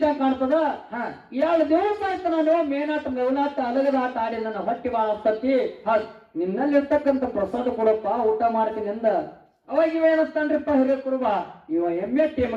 ಕಾಣ್ತದ. 2 ದಿವಸ ಆಯ್ತು ನಾನು ಮೇನಾಟ ಮೇವನಾಟ ಅಲಗದ ಆಟ ಆಡಿ ನನ್ನ ಹೊಟ್ಟಿ ಬಾಳ ಹತ್ತತಿ. ನಿನ್ನಲ್ಲಿರ್ತಕ್ಕಂಥ ಪ್ರಸಾದ ಕೊಡಪ್ಪ, ಊಟ ಮಾಡ್ತೀನಿ ಅಂದ. ಅವಾಗ ಇವೇನಂತಾನ್ರಿಪ್ಪ ಹಿರೇಕುರುಬ, ಇವ ಎಮ್ಮೆ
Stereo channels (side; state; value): both; identical; correlation 1.00